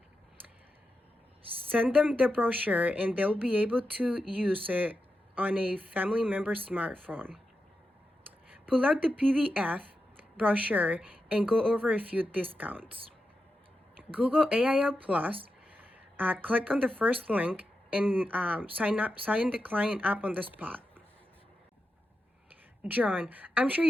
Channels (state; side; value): normal; both; correlation 0.89